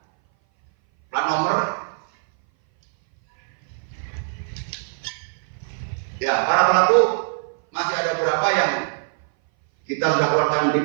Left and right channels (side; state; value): left; silent; 59 dB below the other